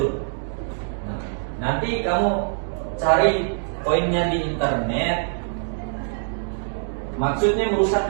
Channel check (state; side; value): silent; left; digital silence